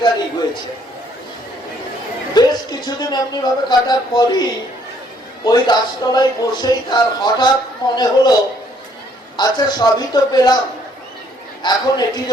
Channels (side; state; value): both; normal; correlation 0.65